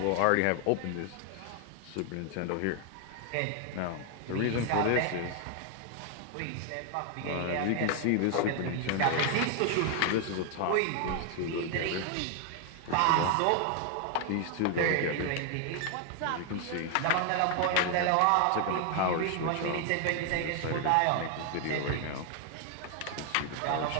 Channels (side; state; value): both; different; correlation 0.01